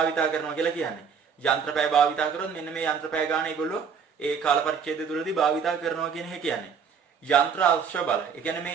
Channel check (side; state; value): left; quieter; 6.5 dB